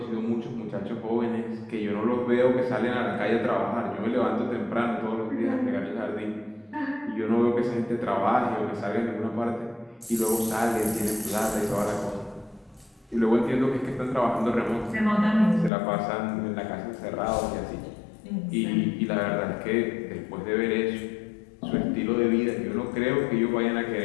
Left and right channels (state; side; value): drops out; right; at 15.7 s